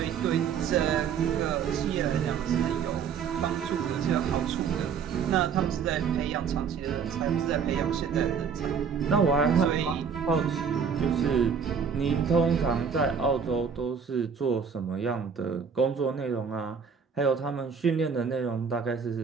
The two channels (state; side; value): quieter; left; 6.5 dB